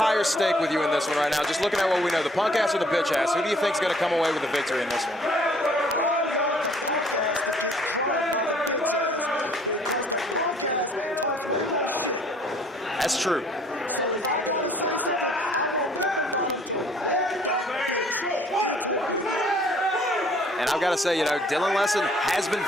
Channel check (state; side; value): normal; both; correlation 0.58